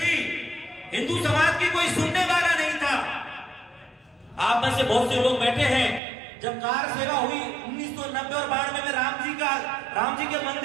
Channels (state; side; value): drops out; left; at 6.0 s